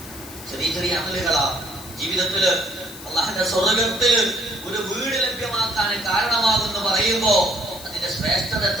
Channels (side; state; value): left; noise; hiss, 15 dB below the sound